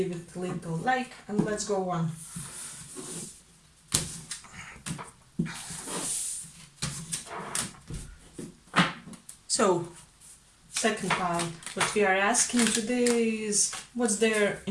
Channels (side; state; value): both; identical; correlation 1.00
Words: it a little like, and let's go on. So second pile. What we are asking today is what's their